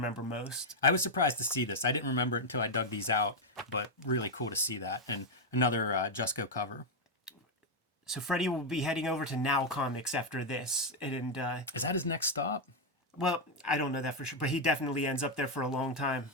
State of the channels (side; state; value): both; normal; correlation 0.01